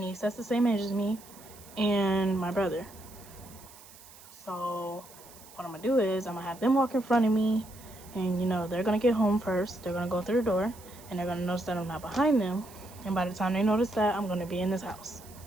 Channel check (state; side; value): noise; right; hiss, 21 dB below the sound